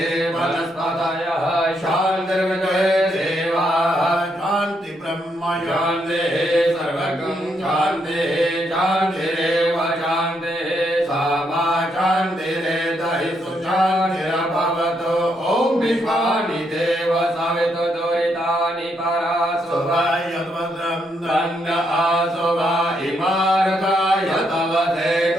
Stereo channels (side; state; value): both; normal; correlation 0.77